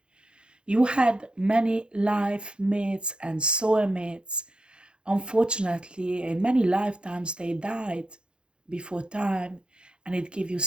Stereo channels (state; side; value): late; left; 0.053 ms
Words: You had many life mates and soulmates. Unfortunately, in many lifetimes, they died before time, and it gave you